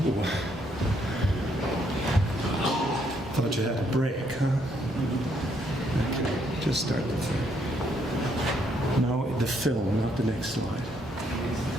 Ooh. Thought you had a break, huh? Okay, just start the film. No, the film, not the next slide.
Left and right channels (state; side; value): normal; both; correlation 0.72